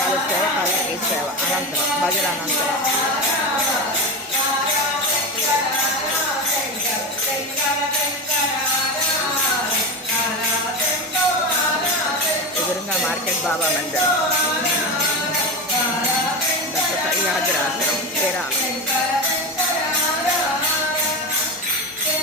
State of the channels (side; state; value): both; normal; correlation 0.21